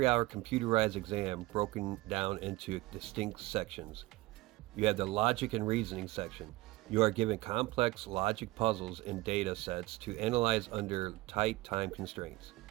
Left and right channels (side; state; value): left; quieter; 19.7 dB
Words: computerized exam broken down into distinct sections. You have the logic and reasoning section. You are given complex logic puzzles and data sets to analyze under tight time constraints.